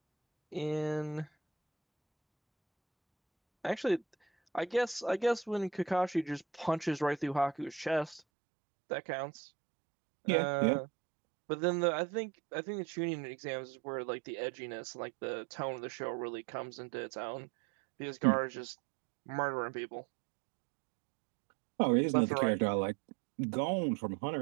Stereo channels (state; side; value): drops out; left; at 8.2 s